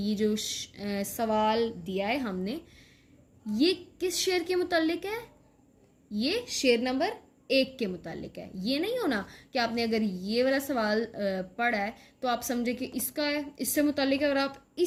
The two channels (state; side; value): identical; both; correlation 1.00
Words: जो सवाल दिया है हमने, ये किस शेर के मुतालिक है, ये शेर नंबर 1 के मुतालिक है। ये नहीं होना कि आपने अगर ये वाला सवाल पढ़ा है तो आप समझे कि इसका है, इससे मुतालिक है और आप